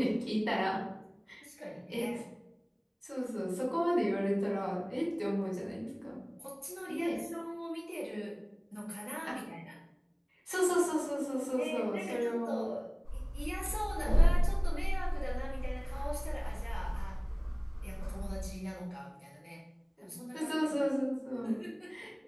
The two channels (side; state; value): both; identical; correlation 1.00